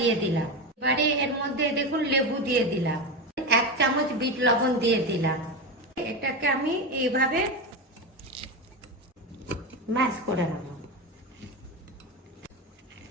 দিলাম। এবারে এর মধ্যে দেখুন লেবু দিয়ে দিলাম, 1 চামচ বিট লবণ দিয়ে দিলাম। এটাকে আমি এইভাবে ম্যাশ করে নেব।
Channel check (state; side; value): normal; both; correlation 0.17